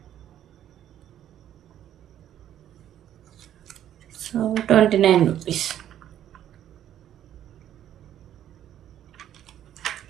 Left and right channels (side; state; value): left; quieter; 11.1 dB